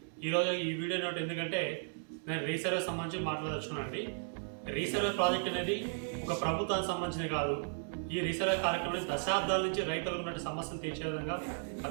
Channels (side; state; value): left; silent; digital silence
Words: ఈరోజు ఈ వీడియో నోట్ ఎందుకంటే నేను రీసర్వే సంబంధించి మాట్లాడదలుచుకున్నానండి. రీసర్వే ప్రాజెక్ట్ అనేది ఒక ప్రభుత్వానికి సంబంధించినది కాదు. ఈ రీసర్వే కార్యక్రమం దశాబ్దాల నుంచి రైతులకు ఉన్న సమస్యలు తీర్చే విధంగా,